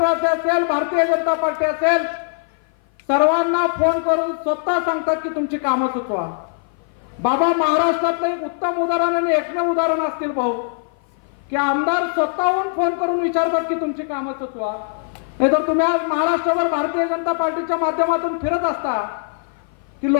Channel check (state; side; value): silent; right; 56 dB below the other